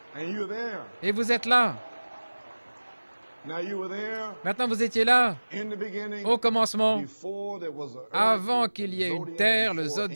Et vous êtes là. Maintenant, vous étiez là, au commencement, avant qu'il y ait une terre, le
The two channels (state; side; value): inverted; both; correlation -1.00